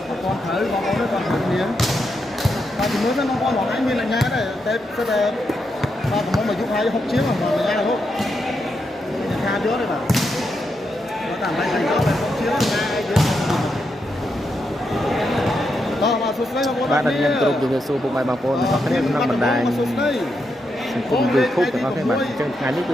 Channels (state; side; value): normal; both; correlation 0.83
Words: còn thử còn có còn thử miếng và thì mới nó con bọn anh mình là nhà đấy tết sẽ là và cũng mà giúp hai học chiếu mà là nhà là không nhà trước đấy mà nó tạm lại thành đó là học chiếu nhà trước bạn đặt nhận trụ dùng số bộ bài bằng phone có cái này năm bản đài cùng YouTube thì có cái bản chân ngày lúc